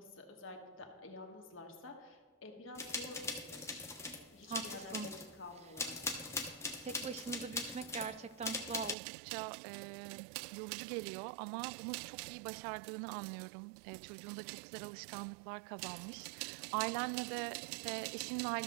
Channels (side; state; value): left; drops out; at 9.0 s